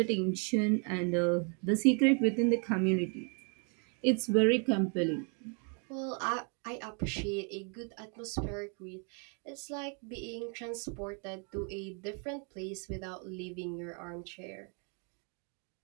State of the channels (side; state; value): left; quieter; 38.5 dB